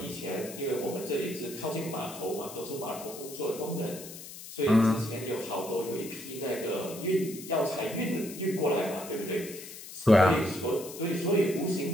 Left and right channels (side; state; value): left; noise; hiss, 13 dB below the sound